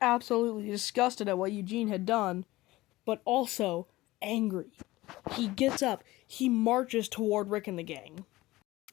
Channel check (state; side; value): quieter; right; 18.5 dB